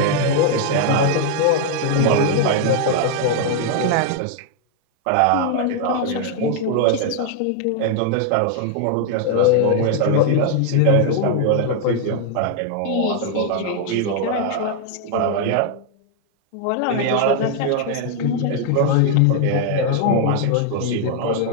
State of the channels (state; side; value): different; both; correlation 0.00